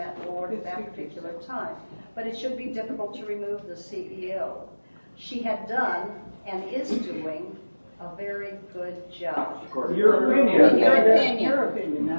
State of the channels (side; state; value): both; inverted; correlation -1.00